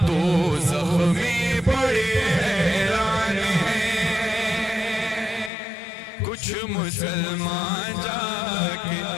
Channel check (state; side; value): drops out; right; at 5.5 s